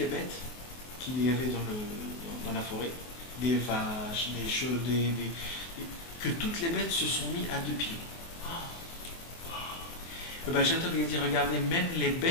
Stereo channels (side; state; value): right; late; 24 ms